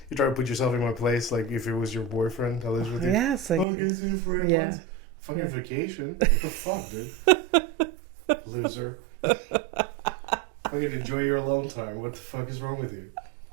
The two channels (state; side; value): drops out; left; at 3.7 s